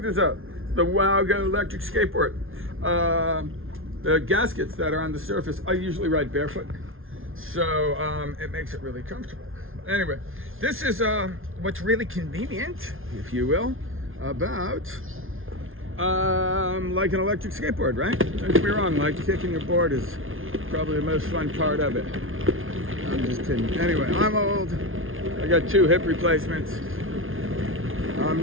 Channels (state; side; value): late; left; 0.60 ms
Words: this out. The Wow Go electric skateboard. The gaskets that are on the surface, I usually ride barefoot, so it makes it really comfortable. Anyway, this is what's really convenient, if you will, about like an electric skateboard, right? Don't get me wrong, like kicking your board is probably the most fun part of it. I'm just kidding. Anyway, I'm old. I got 2 hip replacements. I'm